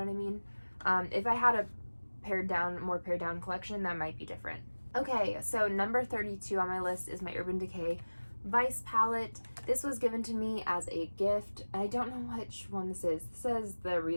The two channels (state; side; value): inverted; both; correlation -1.00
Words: I mean? If I had a more pared down collection, that might be different. Okay, so number 32 on my list is my Urban Decay Vice palette. This was given to me as a gift. I don't know which one this is. This says the